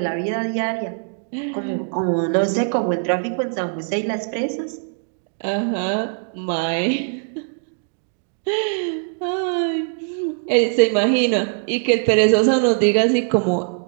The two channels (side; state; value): left; silent; 65 dB below the other